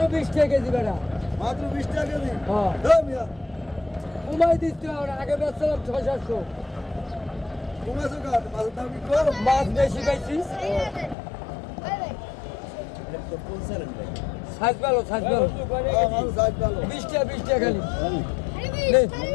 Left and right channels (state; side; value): drops out; right; at 11.2 s